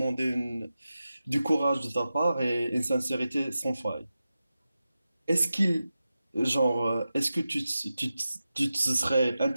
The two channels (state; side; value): inverted; both; correlation -0.93